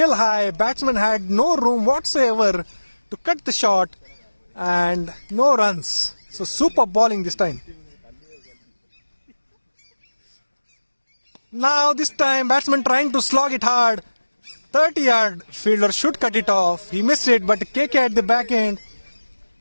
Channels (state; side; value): inverted; both; correlation -1.00